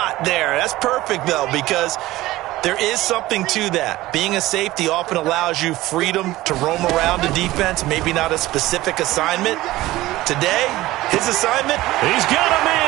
there. That's perfect, though, because there is something to that. Being a safety often allows you freedom to roam around the defense, maybe not a specific assignment. Today, his assignment, he's got a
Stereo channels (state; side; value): quieter; left; 17.3 dB